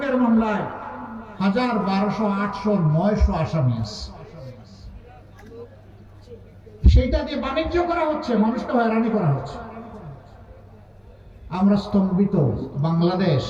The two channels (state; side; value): identical; both; correlation 1.00